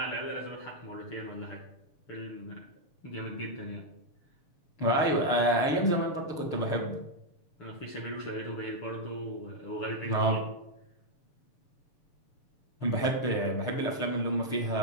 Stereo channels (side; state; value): right; late; 6.6 ms